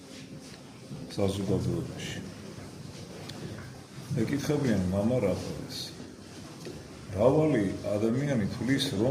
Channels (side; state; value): both; identical; correlation 1.00